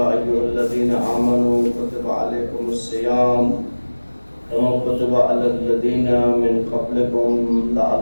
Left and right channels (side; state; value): both; inverted; correlation -1.00